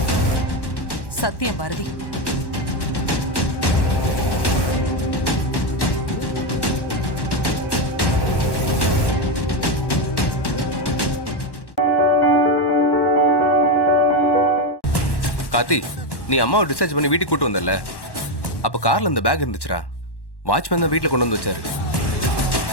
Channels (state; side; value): late; right; 1.1 ms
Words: சத்தியம் பாரதி. கார்த்தி, நீ அம்மாவை டிஸ்சார்ஜ் பண்ணி வீட்டுக்கு கூட்டு வந்தல, அப்ப கார்ல இந்த பேக் இருந்துச்சுடா. வாட்ச்மேன் தான் வீட்டுல கொண்டு வந்து வச்சாரு.